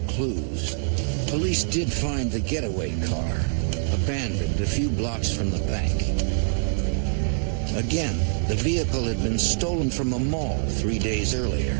clues, police did find the getaway car, abandoned a few blocks from the bank. Again, the vehicle had been stolen from a mall 3 days earlier.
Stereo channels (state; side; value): silent; left; digital silence